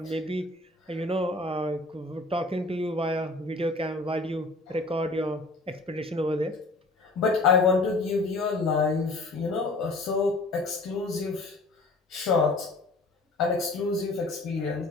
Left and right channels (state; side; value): quieter; right; 3.0 dB